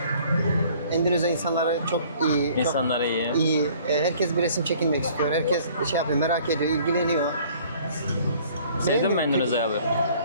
Endonezya insanları çok iyi. İnsanları iyi. İyi. Herkes bir resim çekinmek istiyor. Herkes merak ediyor, ilgileniyor. Sevdin mi Endonezya'yı abi?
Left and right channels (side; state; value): both; inverted; correlation -0.55